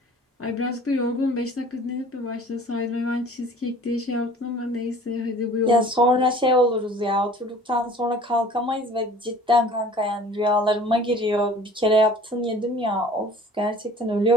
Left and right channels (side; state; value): both; normal; correlation 0.48